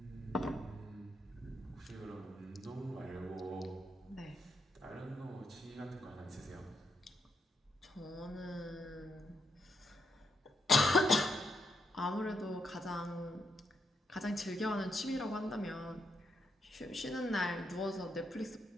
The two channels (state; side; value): normal; both; correlation 0.81